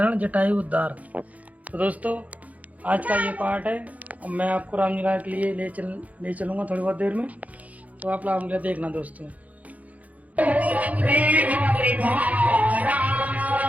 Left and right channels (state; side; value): late; left; 0.072 ms